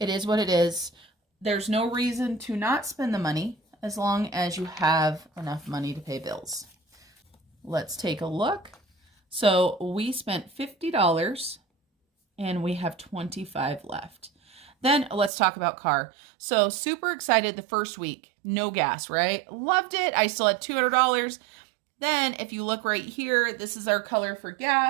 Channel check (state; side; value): drops out; left; at 15.3 s